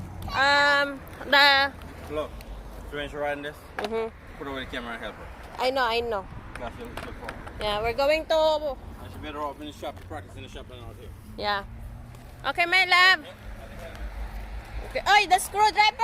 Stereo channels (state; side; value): identical; both; correlation 1.00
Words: The. Look. So when she's riding this, Mhm. put away the camera and help her. I know, I know. That's your phone. Yeah, we're going to. And she better off in the shop to practice in the shop than out here. Yeah. Okay, my love. Okay. Oh, the